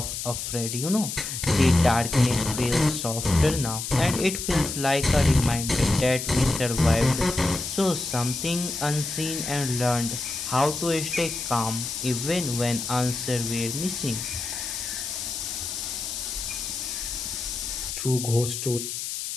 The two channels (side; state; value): left; noise; hiss, 5 dB below the sound